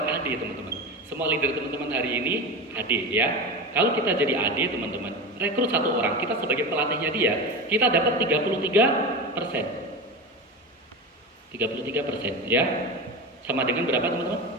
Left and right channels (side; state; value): both; normal; correlation 0.24